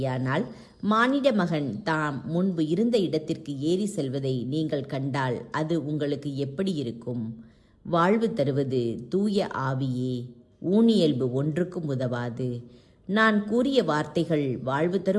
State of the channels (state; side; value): identical; both; correlation 1.00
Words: மானிட மகன் தாம் முன்பு இருந்த இடத்திற்கு ஏறி செல்வதை நீங்கள் கண்டால் அது உங்களுக்கு எப்படி இருக்கும்? வாழ்வு தருவது தூய ஆவியே. ஊனியல்பு ஒன்றுக்கும் உதவாது. நான் கூறிய வார்த்தைகள் வாழ்வு